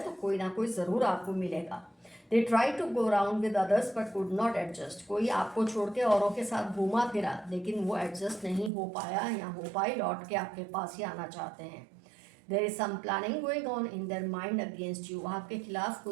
तो कोई ना कोई ज़रूर आपको मिलेगा। They try to go around with others but could not adjust. कोई आपको छोड़ के औरों के साथ घूमा फिरा लेकिन वो एडजस्ट नहीं हो पाया या हो पाई, लौट के आपके पास ही आना चाहते हैं। There is some planning going on in their mind against you. आपके खिलाफ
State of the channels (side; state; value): left; drops out; at 8.7 s